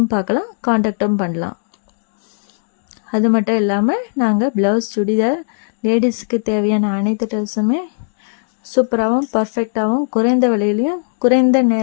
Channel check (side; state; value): right; silent; digital silence